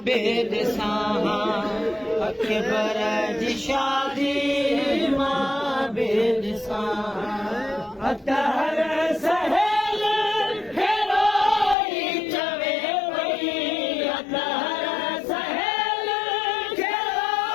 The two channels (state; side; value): drops out; right; at 11.8 s